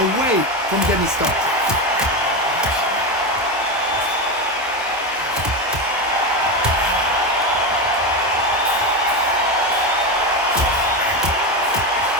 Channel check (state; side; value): normal; both; correlation 0.15